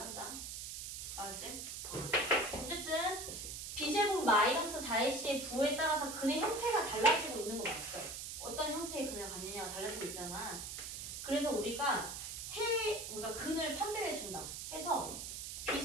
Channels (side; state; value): right; noise; hiss, 7 dB below the sound